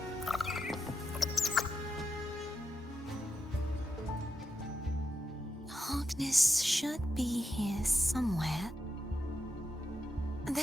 Hogness should be here somewhere.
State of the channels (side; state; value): both; normal; correlation 0.86